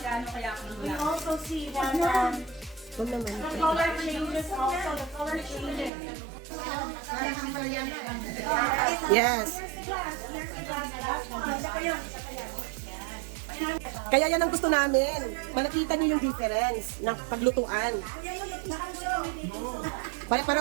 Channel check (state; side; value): drops out; left; at 5.9 s